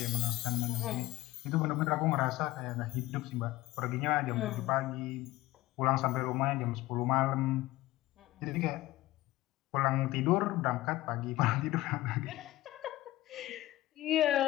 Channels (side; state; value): right; quieter; 17.3 dB